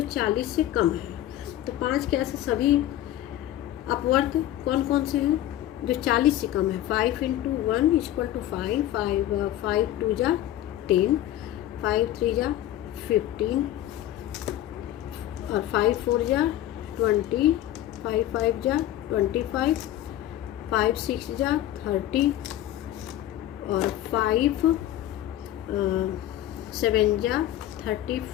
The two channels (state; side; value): quieter; right; 13.2 dB